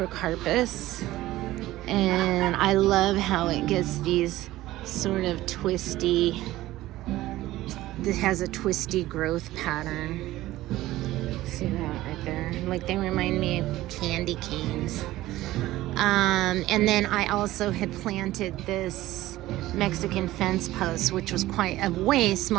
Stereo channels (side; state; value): left; quieter; 16.2 dB